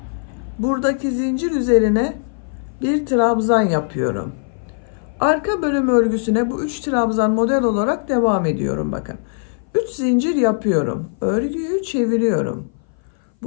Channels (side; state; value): right; silent; 59 dB below the other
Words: Buradaki zincir üzerine bir trabzan yapıyorum. Arka bölüm örgüsüne bu 3 trabzan model olarak devam ediyorum bakın. 3 zincir yapıyorum. Örgüyü çeviriyorum.